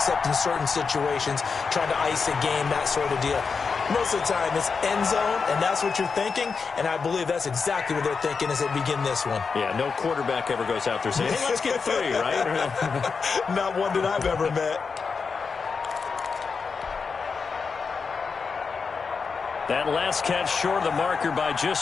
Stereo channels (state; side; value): quieter; right; 5.2 dB